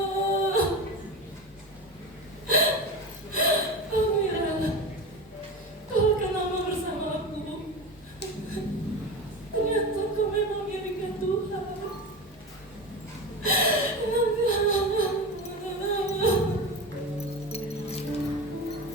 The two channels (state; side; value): normal; both; correlation 0.25